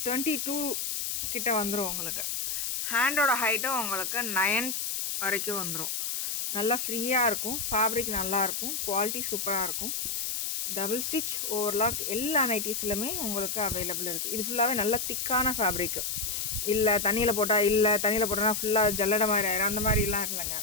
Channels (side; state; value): left; noise; hiss, 2 dB below the sound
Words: 22 கிட்ட வந்துடும். உங்களுக்கு ஹேண்டோட ஹைட்டும் உங்களுக்கு 9 வரைக்கும் வந்துடும். நல்லா ஃப்ரீயாக இருக்கும். ஃபேப்ரிக் நல்லாயிருக்கும். குவாலிட்டி சூப்பராக இருக்கும். டபுள் ஸ்டிச் ஓவர்லாக் எல்லா நைட்டிஸ்லையுமே உங்களுக்கு அவைலபிள் இருக்குது. இது ஃபுல்லாகவே நல்ல திக்கான ஃபேப்ரிக்கு. இல்லை தண்ணியில் போட்டோன்னா ஃபுல்லாக ஜல்லடை மாதிரி ஆயிரும். அந்த மாதிரிலாம் இல்லைங்க,